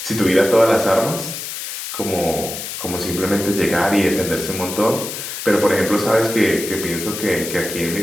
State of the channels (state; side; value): noise; left; hiss, 7 dB below the sound